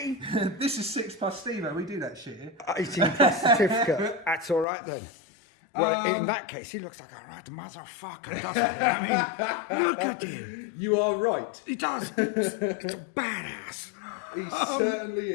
This is 6+ Stevo, we do that shit here. 18 plus certificate. That's all right then. Well, in that case, he looks like a right motherfucker, doesn't he? I mean, look at him. You are right. He does. It's a badass. He certainly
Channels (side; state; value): right; drops out; at 4.7 s